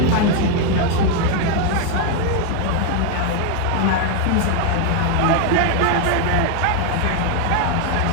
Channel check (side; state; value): both; different; correlation 0.01